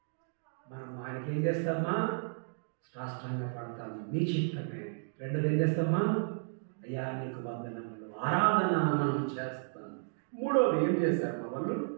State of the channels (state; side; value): silent; left; digital silence